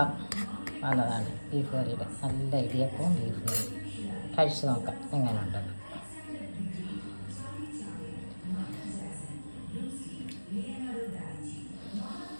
വന്നതാണ് ബീഫ് കറിയുടെ. നല്ല ഇടിയപ്പവും ബീഫ് കറി. കഴിച്ച് നോക്കാം എങ്ങനെയുണ്ട്.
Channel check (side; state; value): both; inverted; correlation -1.00